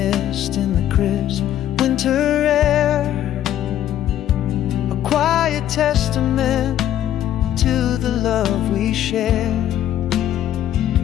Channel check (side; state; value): right; quieter; 11.6 dB